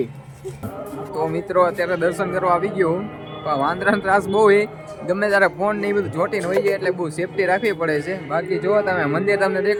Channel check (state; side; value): identical; both; correlation 1.00